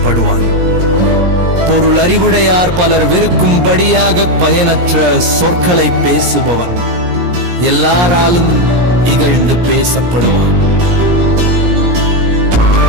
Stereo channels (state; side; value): late; left; 17 ms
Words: பொருள் அறிவுடையார் பலர் வெறுக்கும்படியாக பயனற்ற சொற்களை பேசுபவன் எல்லாராலும் இகழ்ந்து பேசப்படுவான்.